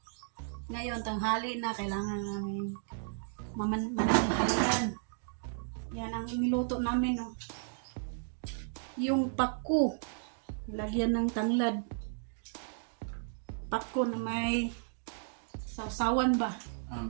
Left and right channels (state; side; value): silent; left; digital silence